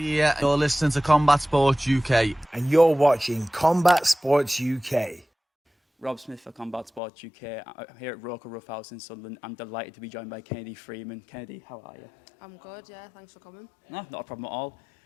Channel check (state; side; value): drops out; right; at 7.0 s